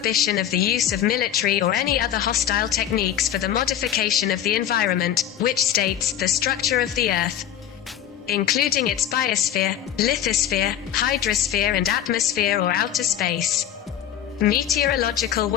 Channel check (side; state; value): right; quieter; 10.3 dB